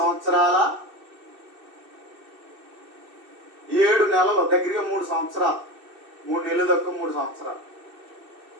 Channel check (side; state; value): left; late; 2.6 ms